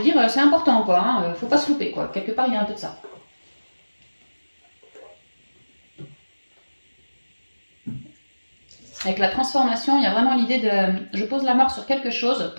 dire, c'est important, quoi. Hein. Faut pas se louper, quoi. Quelque part, il y a un peu de ça. Avec la transformation, il y a vraiment l'idée de... Je pose la marque sur quelque chose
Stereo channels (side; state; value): both; inverted; correlation -1.00